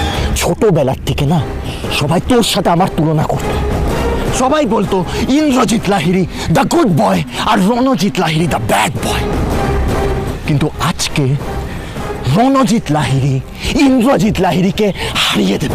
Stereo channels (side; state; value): both; identical; correlation 1.00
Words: ছোটবেলার থেকে না সবাই তোর সাথে আমার তুলনা করত। সবাই বলতো Indrajit Lahiri the good boy আর Ranajit Lahiri the bad boy. কিন্তু আজকে রণজিৎ লাহিড়ী ইন্দ্রজিৎ লাহিড়ীকে হারিয়ে